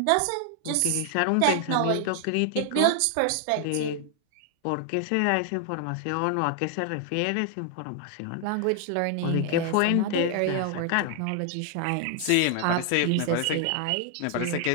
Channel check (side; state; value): both; different; correlation 0.00